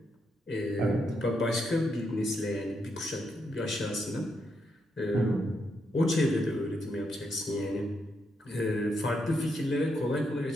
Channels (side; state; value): both; normal; correlation 0.80